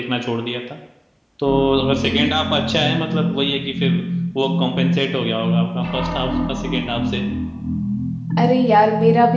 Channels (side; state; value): both; identical; correlation 1.00